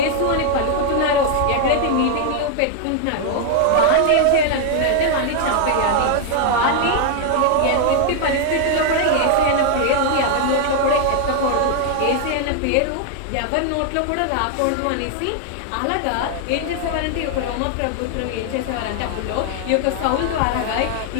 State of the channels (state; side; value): different; both; correlation 0.00